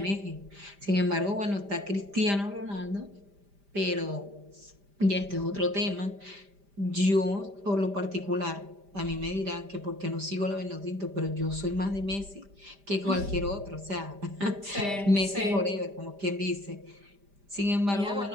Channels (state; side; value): late; left; 5.0 ms